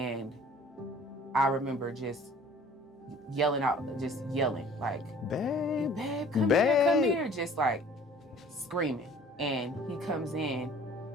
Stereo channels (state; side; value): normal; both; correlation 0.51